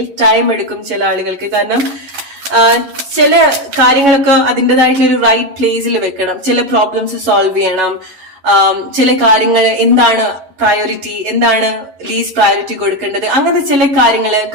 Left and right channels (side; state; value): left; late; 11 ms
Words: ടൈം എടുക്കും ചില ആളുകൾക്ക്. കാരണം ചില കാര്യങ്ങളൊക്കെ അതിൻ്റെതായിട്ടുള്ള ഒരു റൈറ്റ് പ്ലേസിൽ വെക്കണം, ചില പ്രോബ്ലംസ് സോൾവ് ചെയ്യണം, ചില കാര്യങ്ങൾ എന്താണ് പ്രയോറിറ്റി, എന്താണ് ലീസ്റ്റ് പ്രയോറിറ്റി കൊടുക്കേണ്ടത്, അങ്ങനത്തെ ചില കാര്യങ്ങൾ